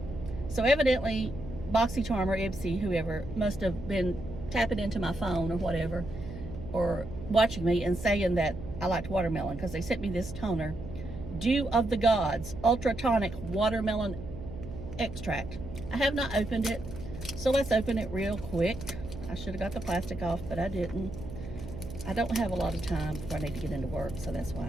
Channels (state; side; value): noise; right; hum, 11 dB below the sound